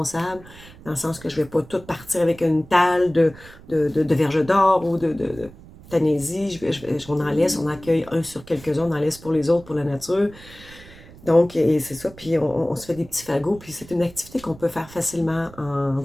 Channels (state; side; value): noise; right; rumble, 20 dB below the sound